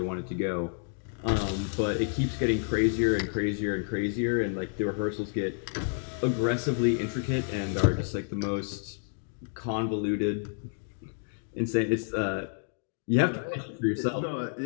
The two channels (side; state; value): right; silent; 58 dB below the other